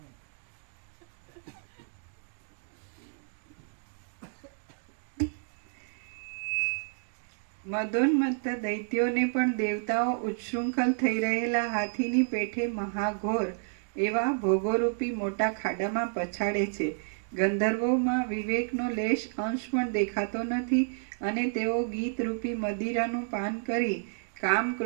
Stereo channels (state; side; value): silent; left; digital silence